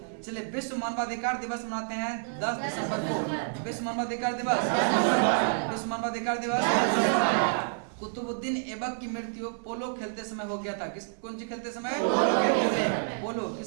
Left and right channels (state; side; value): silent; left; digital silence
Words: चलिए विश्व मानवाधिकार दिवस मनाते हैं 10 दिसंबर को। विश्व मानवाधिकार दिवस, विश्व मानवाधिकार दिवस। कुतुबुद्दीन ऐबक की मृत्यु पोलो खेलते समय हो गया था। किस कौन सी खेलते समय? पोलो।